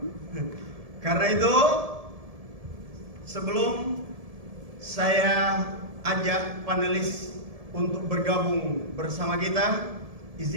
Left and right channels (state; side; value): late; left; 1.7 ms